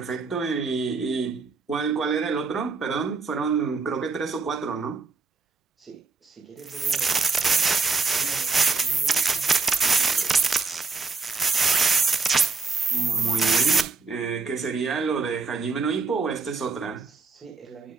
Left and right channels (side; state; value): left; quieter; 4.4 dB